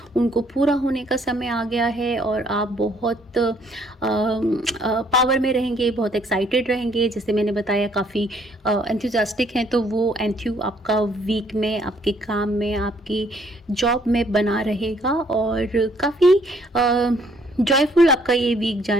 उनको पूरा होने का समय आ गया है और आप बहुत पावर में रहेंगे, बहुत एक्साइटेड रहेंगे. जैसे मैंने बताया काफ़ी एंथुजियास्टिक हैं, तो वो एंथ्यू आपका वीक में, आपके काम में, आपकी जॉब में बना रहेगा और काफ़ी जॉयफुल आपका ये वीक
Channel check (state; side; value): normal; both; correlation 0.65